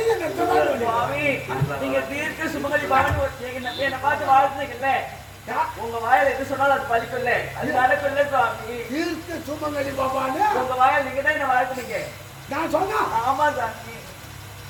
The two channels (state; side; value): identical; both; correlation 1.00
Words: சுவாமி, நீங்க தீர்க்க சுமங்கலி பாருங்க. என்னை பார்த்து வாழ்த்துனீங்கல்ல, உங்க வாயில எது சொன்னாலும் அது பலிக்கும்ல, அது நடக்கும்ல சுவாமி. தீர்க்க சுமங்கலி பாபான்னு உங்க வாயில நீங்க தான் என்ன வாழ்த்துனீங்க. நான் சொன்னா ஆமா சாமி.